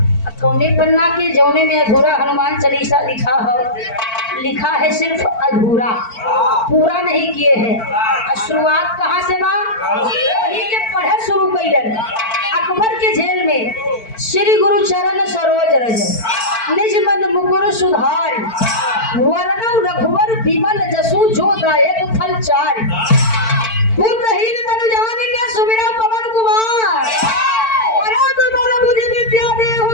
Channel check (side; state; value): right; late; 4.5 ms